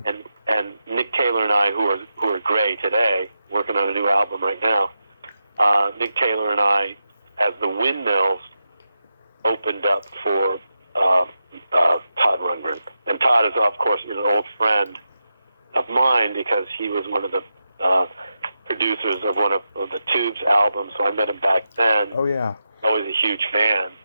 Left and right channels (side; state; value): both; inverted; correlation -0.88